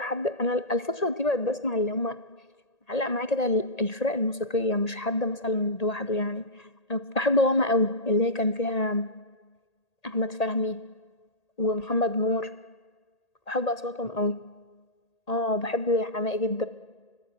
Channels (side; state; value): right; late; 1.8 ms